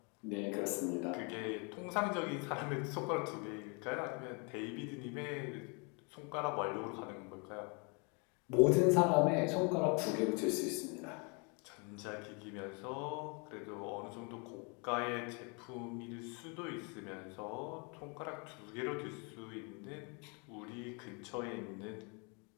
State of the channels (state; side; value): quieter; right; 33.7 dB